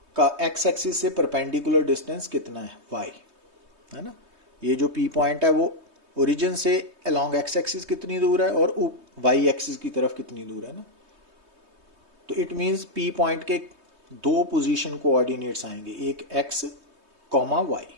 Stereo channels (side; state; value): left; late; 3.2 ms